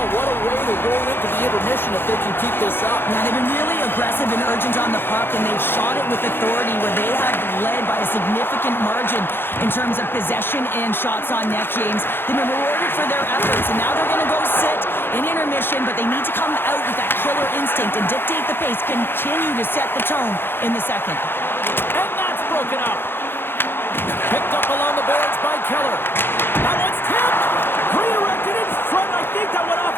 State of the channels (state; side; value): late; right; 0.10 ms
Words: what a way to roll into the intermission if they can keep this up. Yeah, they've been really aggressive and urgent on the puck, and they've shot it with authority where they have led by a significant margin in terms of possession and shots on net, James. They've been rewarded for their efforts, and now they're going to go sit in intermission, but they need to come out with that killer instinct and dictate the pace, continue to set the tone in the second. And that's broken up. Picked up along the boards by Keller. That one's tipped. Redirected in front. I think that went off